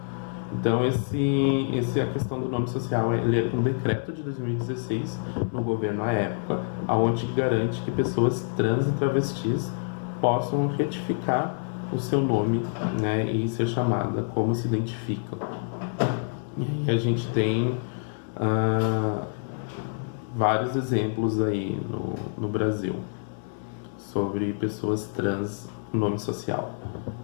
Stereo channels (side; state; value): right; silent; 60 dB below the other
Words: Então, a questão do nome social, ele é um decreto de 2016 no governo à época, onde garante que pessoas trans e travestis possam retificar o seu nome, né, e ser chamada como se identificam. E a gente tem vários exemplos aí no Brasil sobre pessoas trans com nome social.